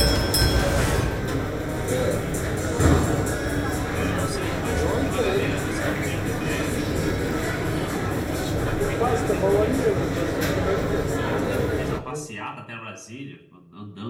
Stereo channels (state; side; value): identical; both; correlation 1.00